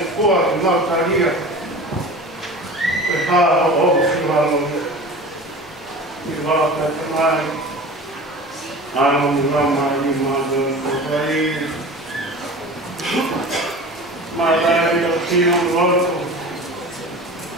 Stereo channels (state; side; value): normal; both; correlation 0.36